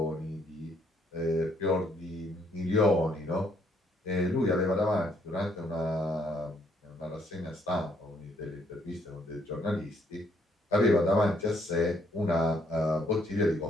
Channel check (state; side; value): normal; both; correlation 0.69